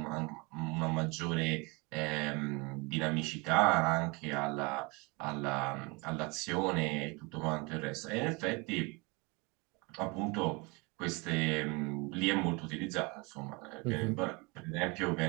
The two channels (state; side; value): quieter; left; 28.1 dB